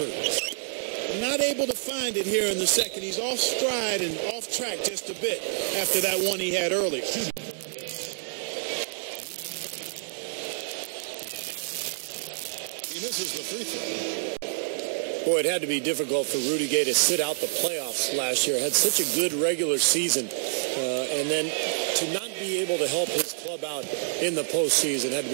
Not able to find it here in the second. He's off stride and off track just a bit after that one he had earlier. He misses the free throw. Boy, it had to be difficult for Rudy Gay to sit out the playoffs last year. Had such a good regular season. And then to not be able to help his club out in the postseason had to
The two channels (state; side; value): silent; left; digital silence